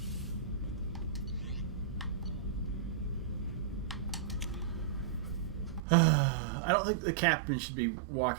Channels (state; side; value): drops out; left; at 5.8 s